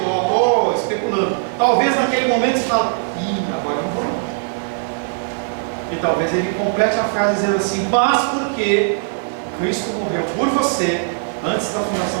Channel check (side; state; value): left; silent; digital silence